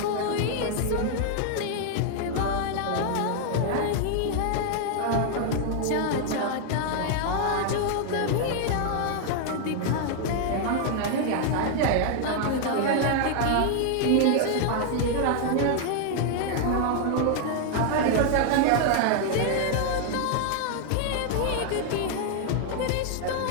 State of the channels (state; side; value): different; both; correlation 0.00